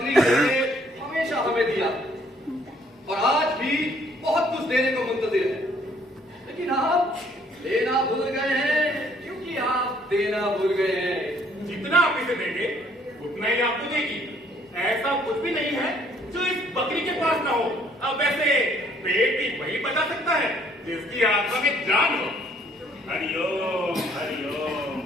ने हमेशा हमें दिया और आज भी बहुत कुछ देने को मुंतजिर है, लेकिन आप देना भूल गए हैं, क्योंकि आप देना भूल गए हैं। जितना आप इसे देंगे उतना ही आपको देगी। ऐसा कुछ भी नहीं है जो इस बकरी के पास ना हो। अब वैसे पेट भी वही बता सकता है जिसकी आत्मा में जान हो। हरिओम हरिओम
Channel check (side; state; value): both; normal; correlation 0.63